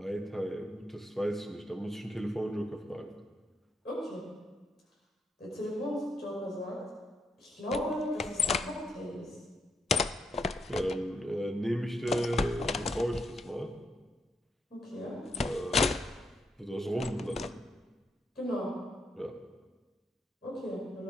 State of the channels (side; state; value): both; normal; correlation 0.78